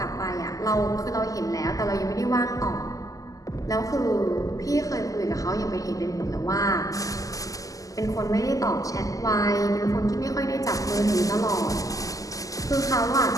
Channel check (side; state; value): right; late; 0.17 ms